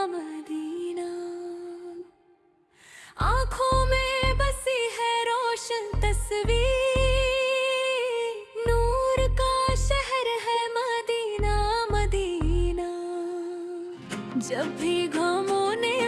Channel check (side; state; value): both; identical; correlation 1.00